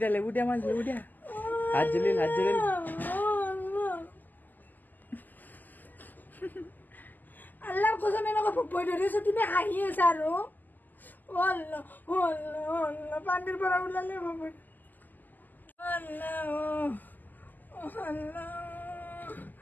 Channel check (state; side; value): late; right; 0.085 ms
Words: দিয়া মাছ, লেবু দিয়া। হাত জ্বলিল। আল্লাহ কসম এনেকুৱা ভয় ধৰিছে, তুমি হাঁহি আছা আৰু পানীৰ পৰা ওলালে ভয়।